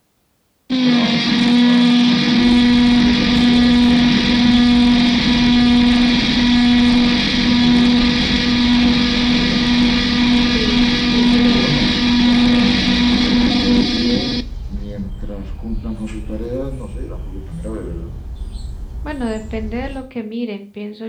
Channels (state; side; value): identical; both; correlation 1.00